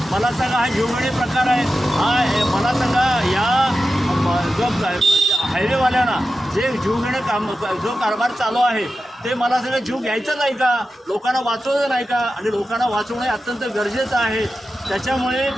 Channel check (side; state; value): both; normal; correlation 0.92